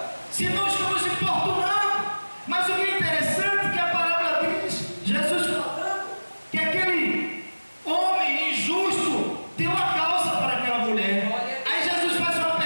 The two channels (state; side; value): inverted; both; correlation -1.00